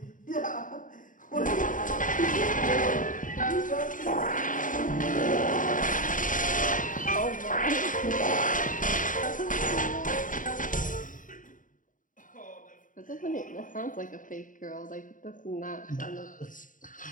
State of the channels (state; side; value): late; right; 0.38 ms